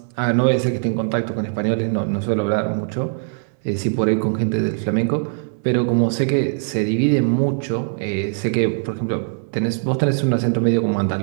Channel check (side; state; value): left; silent; 62 dB below the other